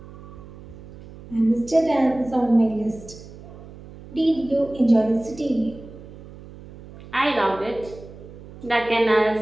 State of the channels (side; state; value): right; noise; hum, 17 dB below the sound